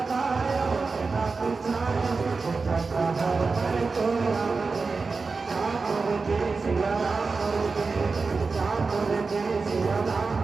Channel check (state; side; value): quieter; left; 4.3 dB